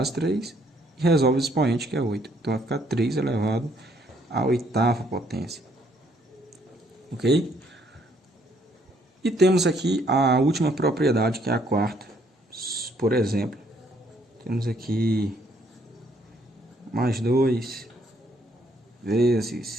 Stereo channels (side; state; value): both; normal; correlation 0.67